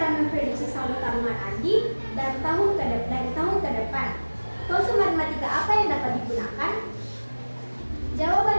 memprediksi saldo tabungan Andi dari tahun ke depan? Konsep matematika apa yang dapat digunakan?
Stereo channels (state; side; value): inverted; both; correlation -1.00